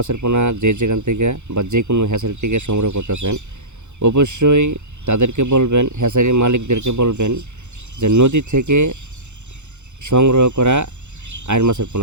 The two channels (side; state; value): left; late; 0.83 ms